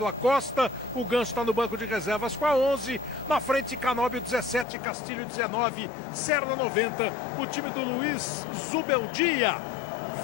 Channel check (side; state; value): right; drops out; at 4.7 s